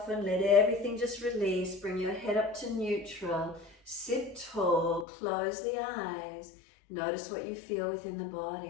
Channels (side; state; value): right; drops out; at 5.1 s